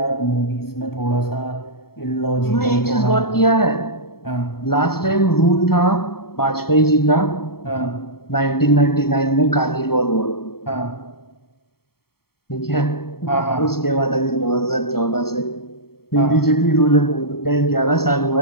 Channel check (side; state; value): right; late; 0.95 ms